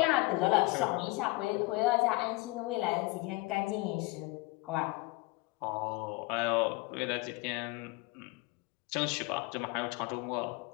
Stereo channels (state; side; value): quieter; right; 23.1 dB